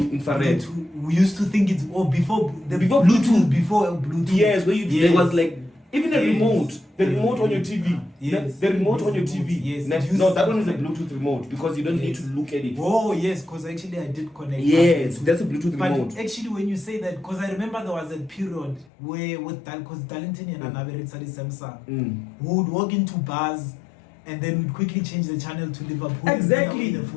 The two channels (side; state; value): right; drops out; at 18.9 s